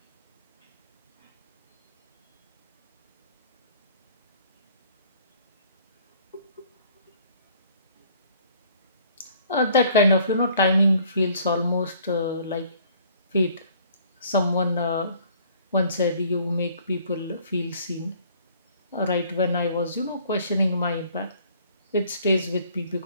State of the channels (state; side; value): inverted; both; correlation -0.57